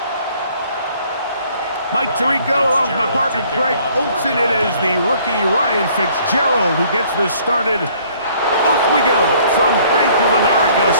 Mike Tirico along with my partner Greg Olson. It is the rookie Ryan Fitzgerald who gets this started. Off we go from Bank of America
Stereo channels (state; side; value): inverted; both; correlation -0.59